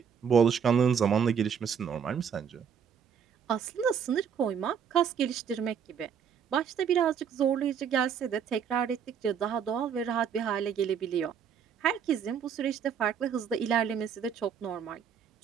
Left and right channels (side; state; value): left; quieter; 7.4 dB